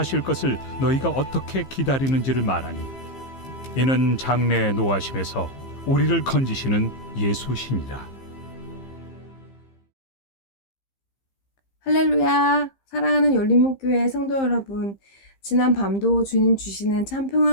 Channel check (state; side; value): late; right; 15 ms